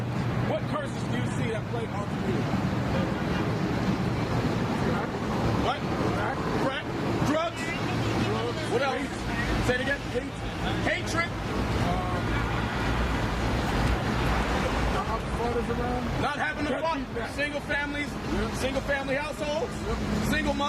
what curses do you see that plague our community? What? Crack. Drugs. What else? Say it again. Hatred. Not having a fun. Single families, single family households, single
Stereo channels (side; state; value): both; identical; correlation 1.00